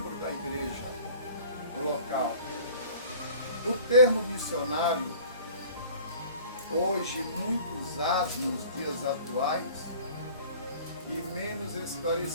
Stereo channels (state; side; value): inverted; both; correlation -0.47